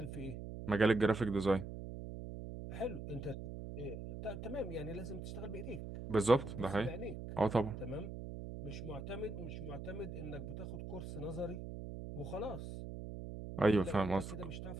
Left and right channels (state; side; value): noise; right; hum, 8 dB below the sound